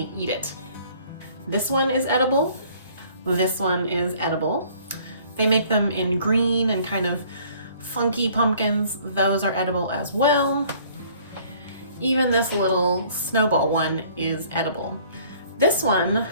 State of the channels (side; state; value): both; inverted; correlation -0.56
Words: eat it. This one is edible. This one is edible. They make them in green and kind of funky pumpkins. Those are edible as well. Even this little snowball one is edible. This one